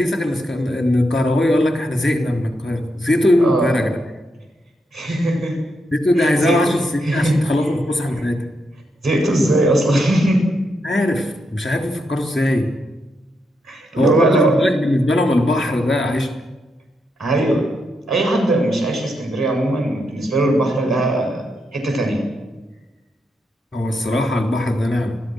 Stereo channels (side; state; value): both; normal; correlation 0.82